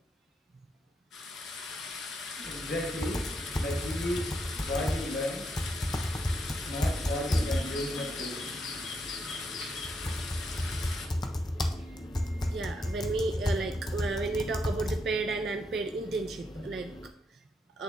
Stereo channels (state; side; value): normal; both; correlation 0.79